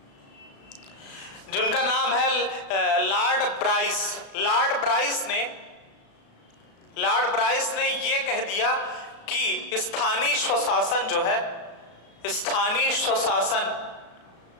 ब्राइस ने ये कह दिया कि स्थानीय स्वशासन जो है, स्थानीय स्वशासन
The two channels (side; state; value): right; late; 36 ms